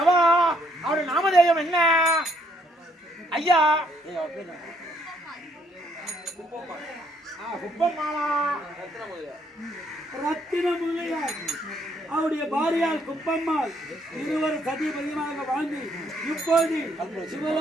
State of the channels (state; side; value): normal; both; correlation 0.69